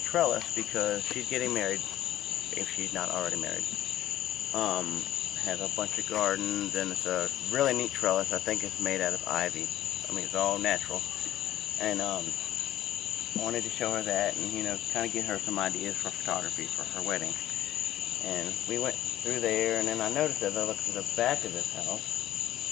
trellis because she's getting married, if she's not already married. Has a bunch of gardens, and it's a really neat trellis. I think it's made out of ivy. I mean, it's all natural. And I wanted to show her that and, you know, kind of get her some ideas for photography for her wedding. And we went through there, and then I noticed as I looked to the back of this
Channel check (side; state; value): right; quieter; 13.4 dB